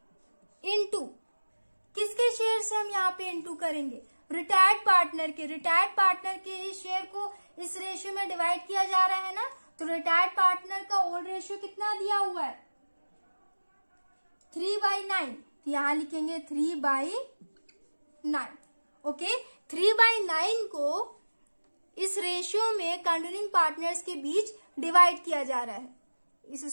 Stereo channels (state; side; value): inverted; both; correlation -1.00